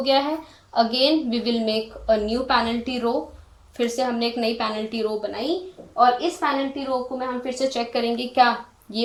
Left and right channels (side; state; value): both; identical; correlation 1.00